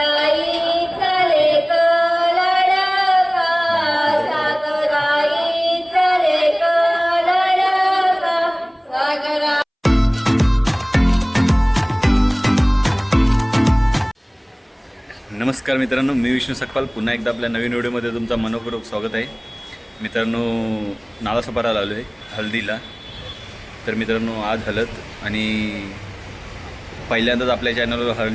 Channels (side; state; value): both; identical; correlation 1.00